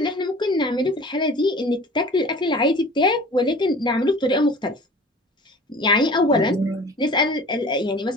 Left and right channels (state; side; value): normal; both; correlation 0.43